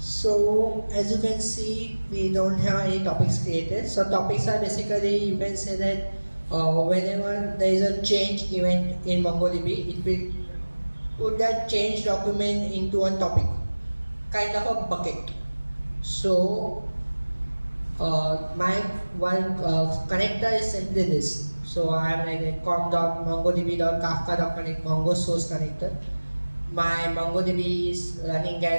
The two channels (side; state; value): both; inverted; correlation -1.00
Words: as you can see, we don't have any topics created. So topics are basically, you can say that whenever there is a change event in MongoDB, it will put that change document into a topic, kind of a bucket. So my one connector is simply this. So I am like a com.mongodb.kafka.connect Mongo source connector. My MongoDB is running